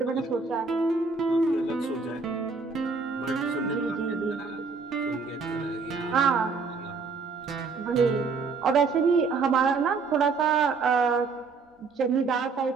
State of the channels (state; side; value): quieter; left; 4.7 dB